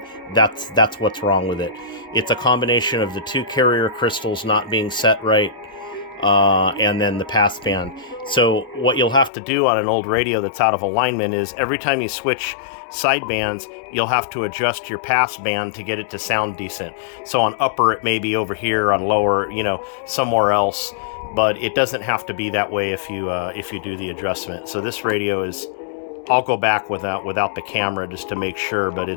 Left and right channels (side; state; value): right; drops out; at 9.3 s